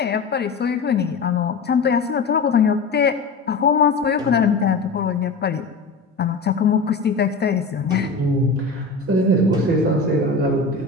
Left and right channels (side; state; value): right; quieter; 4.0 dB